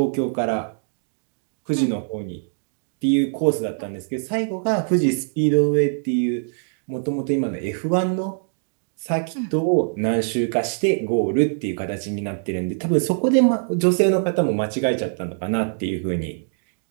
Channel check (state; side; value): silent; left; digital silence